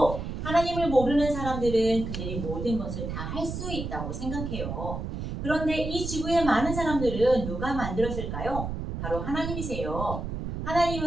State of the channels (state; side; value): noise; right; rumble, 5 dB below the sound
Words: 하나님을 모르는 사람들은 그들이 모든 것을 다 할 수 있다고 생각해요. 그런데 이 지구의 많은 사람들은 누가 만들었을까요? 바로 하나님이세요.